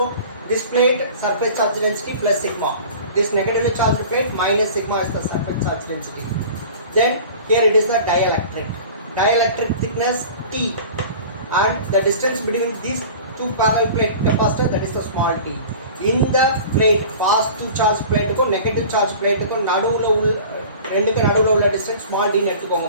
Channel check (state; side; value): inverted; both; correlation -0.41